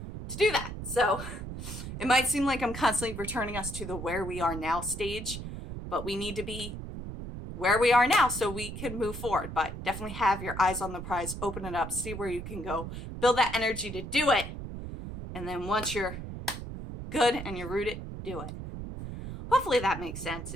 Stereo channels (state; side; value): noise; right; rumble, 8 dB below the sound